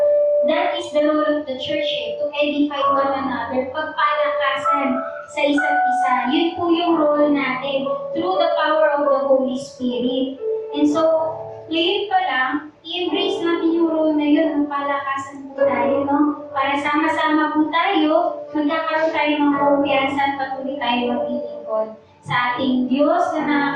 That is the role of the church to edify one another, pagpalakasan sa isa't isa. Yun po yung role natin through the power of the Holy Spirit. And so, ngayon pa lang, i-embrace natin yung role na yun, palakasan po tayo, no? Para sama-sama po tayo, magkakaroon tayo ng kumpiyansa at patuloy tayo maglilingkod sa ating Diyos na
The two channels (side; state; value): both; identical; correlation 1.00